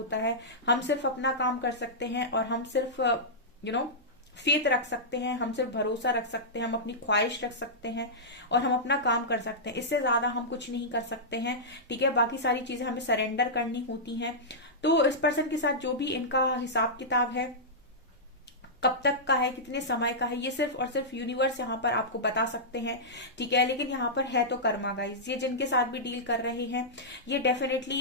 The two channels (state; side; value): normal; both; correlation -0.12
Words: है। हम सिर्फ अपना काम कर सकते हैं और हम सिर्फ फेथ रख सकते हैं, हम सिर्फ भरोसा रख सकते हैं, हम अपनी ख्वाहिश रख सकते हैं और हम अपना काम कर सकते हैं, इससे ज्यादा हम कुछ नहीं कर सकते हैं, ठीक है। बाकी सारी चीजें हमें सरेंडर करनी होती हैं। तो इस पर्सन के साथ जो भी इनका हिसाब किताब है, कब तक का है, कितने समय का है, ये सिर्फ और सिर्फ यूनिवर्स यहाँ पर आपको बता सकते हैं, ठीक है। लेकिन यहाँ पर है तो कर्मा गाइस, ये जिनके साथ भी डील कर रहे हैं ये